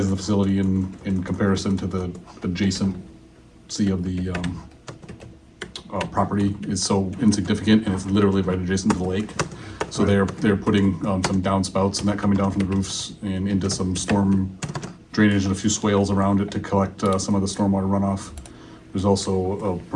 of the facility in comparison to the adjacency of the property is so insignificant, and it's literally right adjacent to the lake. So they're putting some downspouts and that coming down from the roofs and into some storm drainage and a few swales around it to collect some of the stormwater runoff. There's also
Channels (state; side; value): identical; both; correlation 1.00